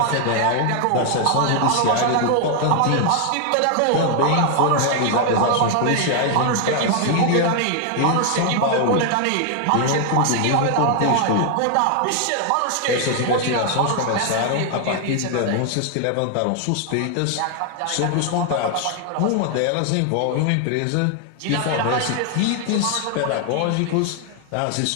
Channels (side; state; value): both; different; correlation 0.00